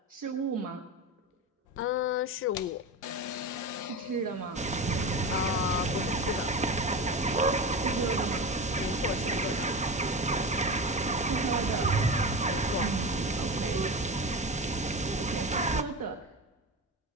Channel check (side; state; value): both; normal; correlation 0.25